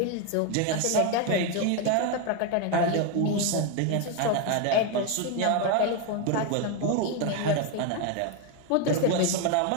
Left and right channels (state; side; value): different; both; correlation 0.01